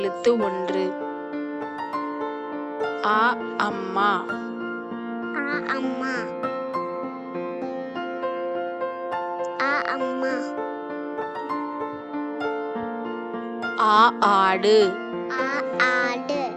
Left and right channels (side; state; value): both; identical; correlation 1.00